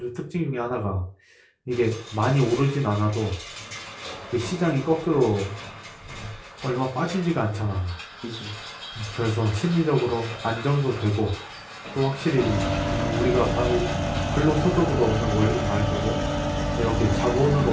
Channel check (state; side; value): identical; both; correlation 1.00